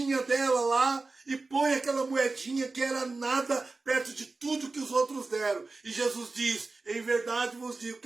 dela lá e põe aquela moedinha que era nada perto de tudo que os outros deram. E Jesus diz, em verdade vos digo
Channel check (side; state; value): left; quieter; 3.6 dB